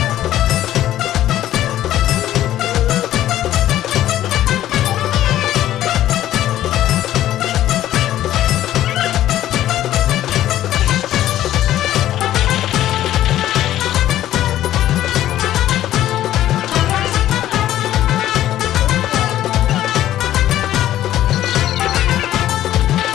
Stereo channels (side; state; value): right; quieter; 13.0 dB